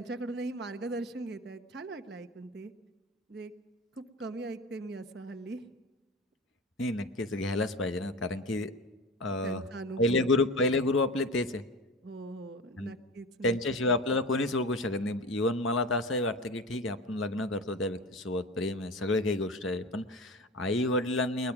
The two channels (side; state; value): both; normal; correlation 0.30